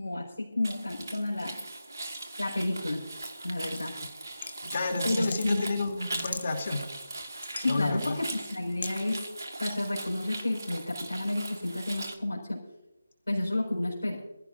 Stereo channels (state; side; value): inverted; both; correlation -0.93